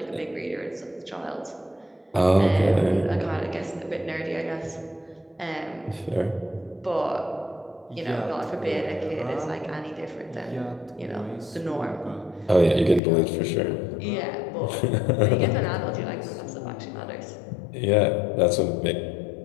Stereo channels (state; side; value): drops out; right; at 13.0 s